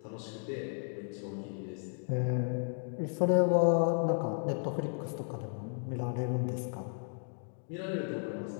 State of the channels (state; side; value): silent; right; 55 dB below the other